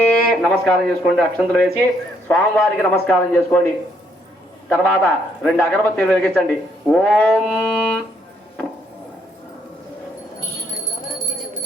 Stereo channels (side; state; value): both; normal; correlation 0.70